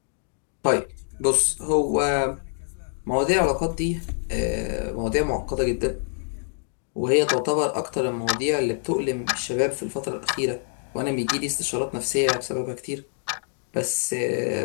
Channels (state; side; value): silent; right; 61 dB below the other